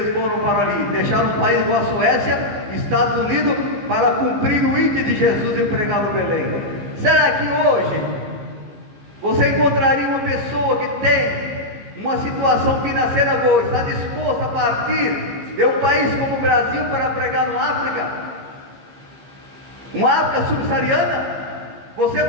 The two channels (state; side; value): late; left; 15 ms